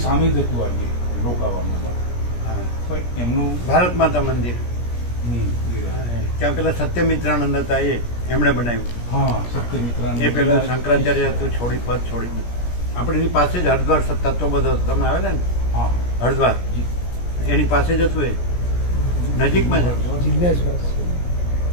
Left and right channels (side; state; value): right; late; 17 ms